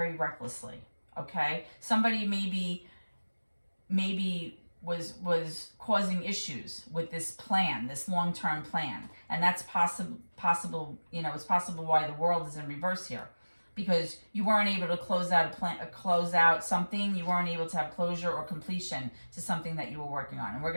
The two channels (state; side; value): inverted; both; correlation -1.00